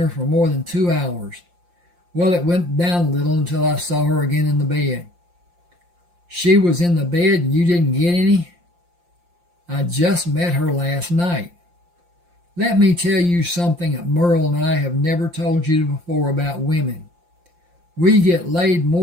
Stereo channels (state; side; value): late; left; 5.7 ms